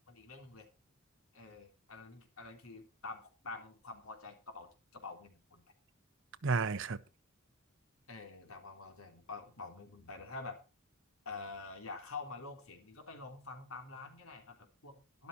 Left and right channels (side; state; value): both; normal; correlation 0.18